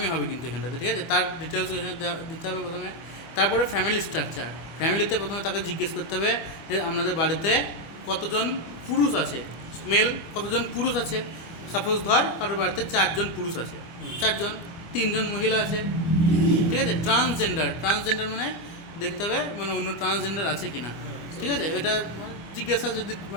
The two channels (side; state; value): right; late; 25 ms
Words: হবে কিন্তু এখানটাতে, ঠিক আছে। তার ডিটেলস এখানে দিতে হবে প্রথমে। তারপরে ফ্যামিলি স্ট্রাকচার, ফ্যামিলিতে প্রথমে তাকে জিজ্ঞেস করতে হবে যে আপনাদের বাড়িতে কতজন পুরুষ আছে, মেল কতজন পুরুষ আছে। সাপোজ ধর কারোর বাড়িতে 4 জন পুরুষ আছে, 4 জন, 3 জন মহিলা আছে, ঠিক আছে। ট্রান্সজেন্ডার মানে দেখতে হবে মানে অন্য ট্রান্সজেন্ডার আছে কিনা, ঠিক আছে। এটা জিজ্ঞাসা যদি